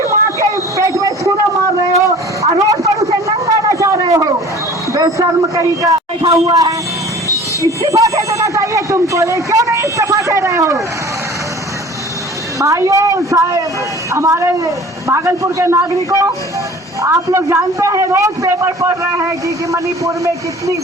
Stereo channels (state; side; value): normal; both; correlation 0.45